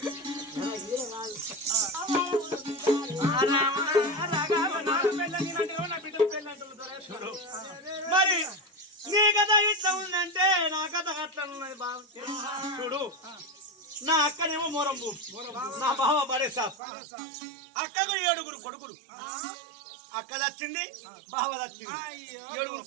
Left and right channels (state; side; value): drops out; left; at 16.8 s